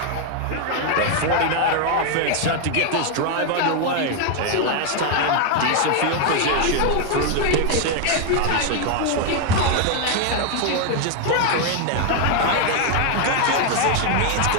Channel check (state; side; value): different; both; correlation 0.01